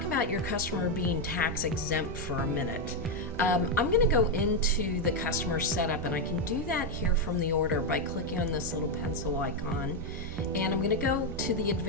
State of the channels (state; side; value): normal; both; correlation 0.04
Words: about your customer being tax exempt for a minute. I'm going to go into the customer setup, and I can do that here from the order by clicking on this little pencil icon. And I'm going to go to the